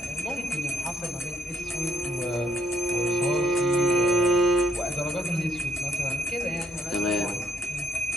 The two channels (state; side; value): normal; both; correlation 0.71